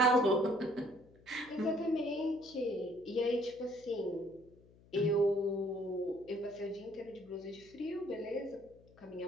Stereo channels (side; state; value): left; noise; hum, 26 dB below the sound